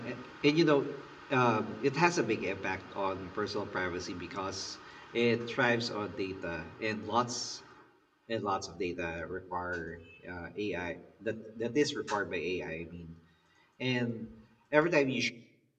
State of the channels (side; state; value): both; identical; correlation 1.00